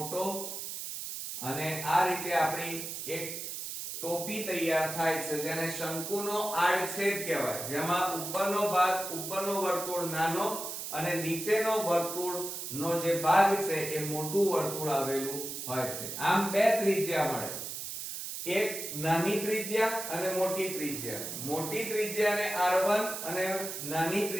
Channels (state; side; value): noise; right; hiss, 6 dB below the sound